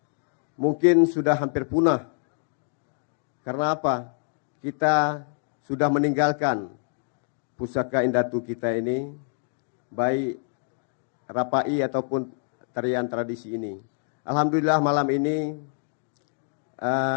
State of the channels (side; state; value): right; silent; 60 dB below the other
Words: mungkin sudah hampir punah. Karena apa? Kita sudah meninggalkan pusaka indatu kita ini, baik Rapai ataupun tarian tradisi ini. Alhamdulillah malam ini